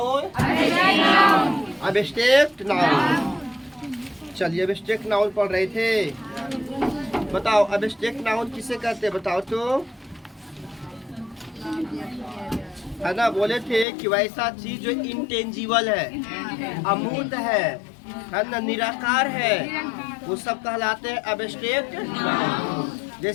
Abstract noun. चलिए एब्स्ट्रैक्ट नाउन पढ़ रहे थे। बताओ एब्स्ट्रैक्ट नाउन किसे कहते हैं? बताओ तो। है ना, बोले थे कि वैसा चीज जो इंटेंजिबल है, अमूर्त है ना, निराकार है, वो सब कहलाते हैं एब्स्ट्रैक्ट नाउन।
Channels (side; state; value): right; drops out; at 13.9 s